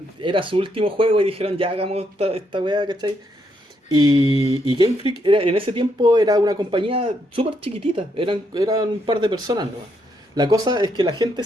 era su último juego y dijeron, ya hagamos esta weá, ¿cachai? Y Game Freak en ese tiempo era una compañía súper chiquitita, eran un par de personas, ¿no? La cosa es que la gente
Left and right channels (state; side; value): normal; both; correlation 0.76